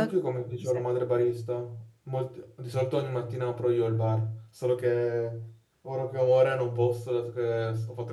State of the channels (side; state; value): both; identical; correlation 1.00